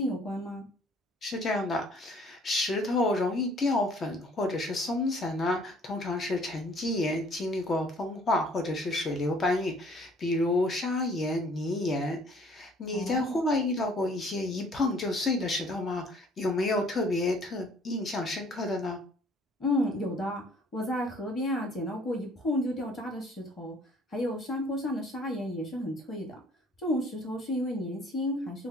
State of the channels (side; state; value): both; normal; correlation 0.58